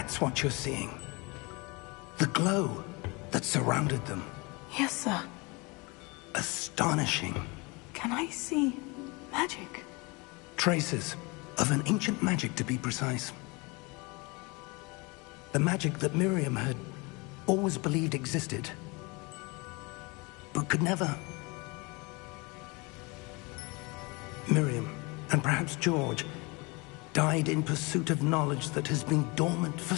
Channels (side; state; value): right; quieter; 27.1 dB